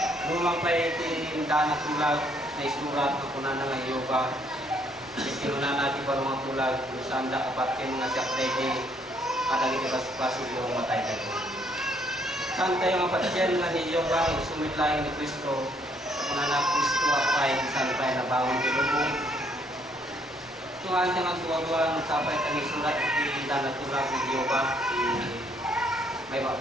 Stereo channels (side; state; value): both; normal; correlation 0.67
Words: Lumang pa iti danak tulag na isurat na kunan nga iyo ba. Ikinunan natin parang mga tulag sanda kapat kayo mga siyak di kadang iti pasipasig yung matay tayo. Saan tayo nga patyan nga ni iyo ba sumit laing ni Kristo kunan na Kristo apay saan tayo nabangon di lubong. Tuhan nga tuwa-tuwa ng sapay tayo isurat iti danak tulag ni iyo ba may